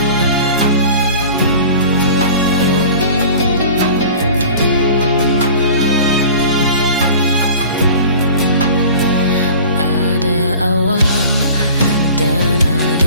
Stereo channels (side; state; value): both; inverted; correlation -0.42